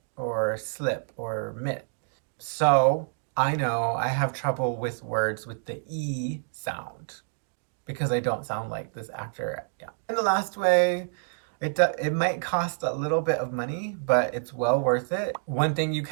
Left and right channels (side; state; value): left; silent; digital silence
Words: or slip or mit. So I know I have trouble with words with the E sound because I don't sound like this actor. Yeah. And the last way, it might cost a little bit of money, but it's well worth it. One thing you